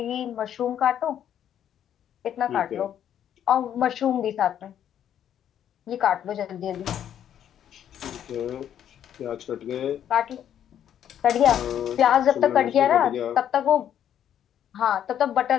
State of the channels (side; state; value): right; quieter; 10.0 dB